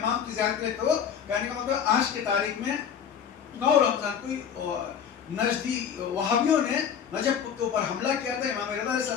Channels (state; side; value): quieter; right; 8.0 dB